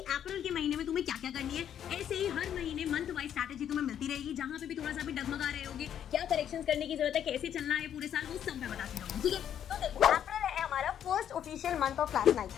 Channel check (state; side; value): quieter; right; 9.6 dB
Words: के महीने में तुम्हें क्या क्या करनी है। ऐसे ही हर महीने मंथ वाइज स्ट्रैटेजी तुम्हें मिलती रहेगी, जहां पे भी थोड़ा सा भी डगमगा रहे होगे, क्या करेक्शंस करने की जरूरत है, कैसे चलना है पूरे साल, वो सब मैं बताती रहूंगी। ठीक है, तो देखो अप्रैल है हमारा first official month of class 9।